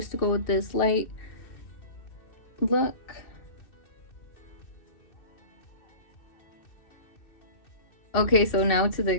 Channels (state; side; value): late; right; 2.6 ms